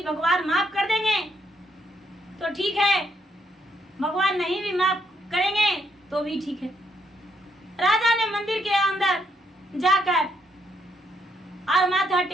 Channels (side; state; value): both; normal; correlation 0.73